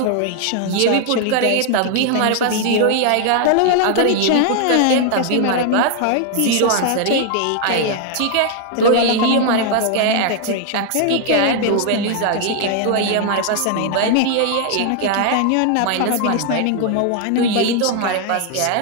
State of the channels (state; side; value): different; both; correlation 0.00